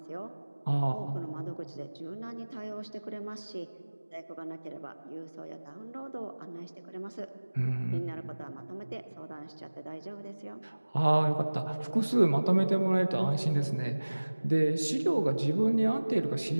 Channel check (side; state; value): both; inverted; correlation -1.00